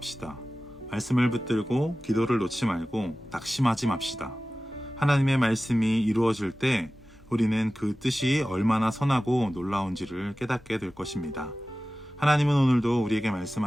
말씀을 붙들고 기도를 놓지 말고 낙심하지 맙시다. 하나님의 말씀이 이루어질 때 우리는 그 뜻이 얼마나 선하고 놀라운지를 깨닫게 될 것입니다. 하나님은 오늘도 우리에게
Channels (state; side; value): normal; both; correlation 0.96